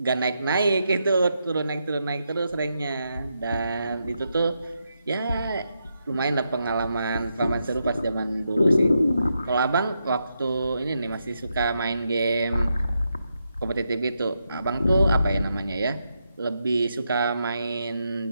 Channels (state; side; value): inverted; both; correlation -0.83